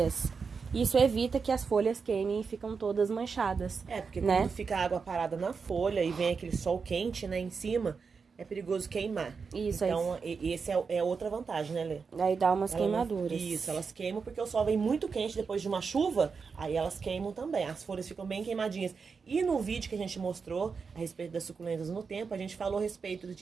Isso evita que as folhas queimem e ficam todas manchadas. Porque né? quando fica a água parada na folha e vem aquele sol quente, né, em cima... é perigoso queimar. Isso, então, esse é outra vantagem, né, Lê? Daí dá umas queimaduras. Isso, elas queimam porque o sol vem muito quente depois de uma chuva, aí elas queimam também. As folhas ficam bem queimadinhas. E no vídeo que a gente mostrou a respeito das suculentas no tempo, a gente falou a respeito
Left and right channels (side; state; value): left; quieter; 5.3 dB